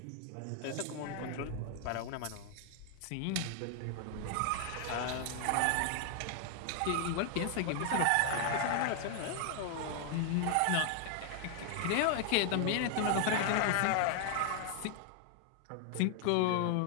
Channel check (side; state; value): both; different; correlation 0.00